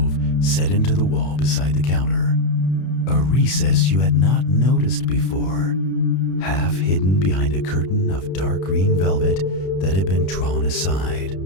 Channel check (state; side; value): late; right; 32 ms